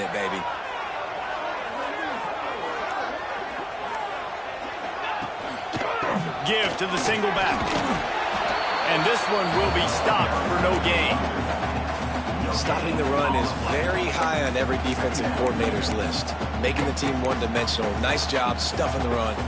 baby. Give to the single back. And this one will be stopped for no gain. Stopping the run is very high on every defensive coordinator's list. Making the team one-dimensional. Nice job stuffing the run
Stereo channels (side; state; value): both; identical; correlation 1.00